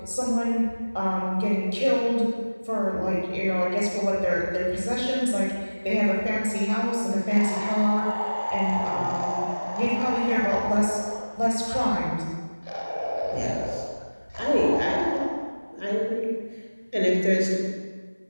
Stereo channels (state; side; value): inverted; both; correlation -1.00